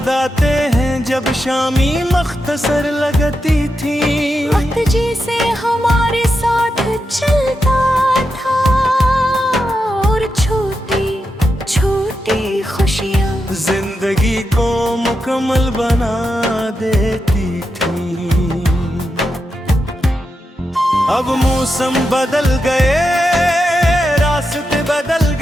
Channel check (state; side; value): normal; both; correlation 0.87